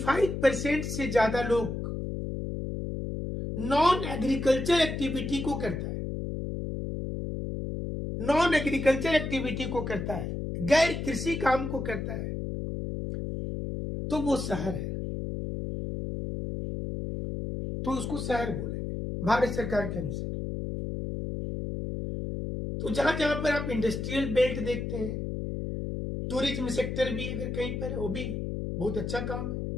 से ज्यादा लोग नॉन एग्रीकल्चर एक्टिविटी को करता है, नॉन एग्रीकल्चर एक्टिविटी को करता है, गैर कृषि काम को करता है, तो वो शहर है, तो उसको शहर बोलेंगे भारत सरकार के अनुसार। तो जहां जहां पर आप इंडस्ट्रियल बेल्ट देखते हैं, टूरिज्म सेक्टर भी अगर कहीं पर, वो भी बहुत अच्छा काम है।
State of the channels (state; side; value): noise; left; hum, 4 dB below the sound